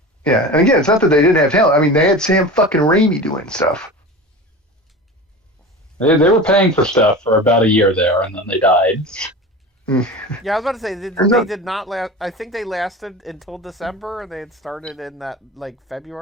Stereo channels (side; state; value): both; normal; correlation 0.32